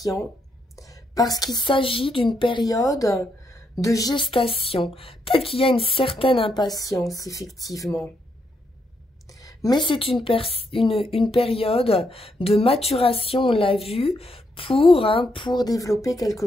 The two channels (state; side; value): normal; both; correlation 0.78